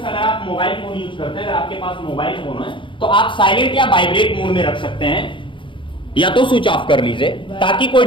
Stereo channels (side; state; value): right; late; 0.24 ms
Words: आप मोबाइल फोन यूज करते हैं, अगर आपके पास मोबाइल फोन है तो आप साइलेंट या वाइब्रेट मोड में रख सकते हैं या तो स्विच ऑफ कर लीजिए ताकि कोई